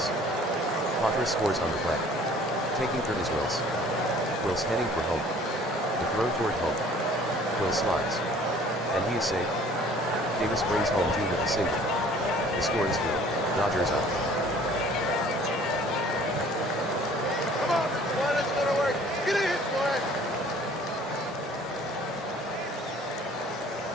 Padres scores on the play. Taking third is Wills. Wills heading for home. The throw toward home. Wills slides. And he is safe. Davis brings home 2 with a single. The score is 3. Dodgers up. Come on, boy, that's gonna work. Get in, boy.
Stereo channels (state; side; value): normal; both; correlation 0.52